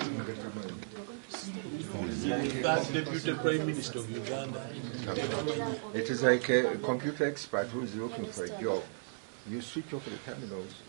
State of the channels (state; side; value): silent; left; digital silence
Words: that Deputy Prime Minister of Uganda. It is like a computer expert who is looking for a job. You switch off the terminals